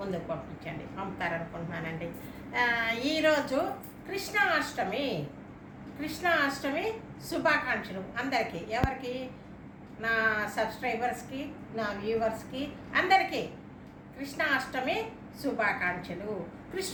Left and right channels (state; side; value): identical; both; correlation 1.00